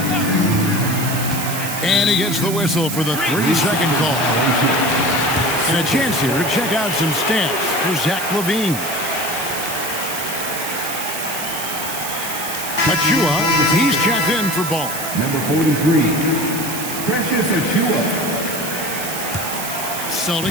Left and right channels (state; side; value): noise; right; hiss, 6 dB below the sound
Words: And he gets the whistle for the 3-second call. And a chance here to check out some stats for Zach LaVine. Achua, he's checked in for ball. Number 43, Precious Achua.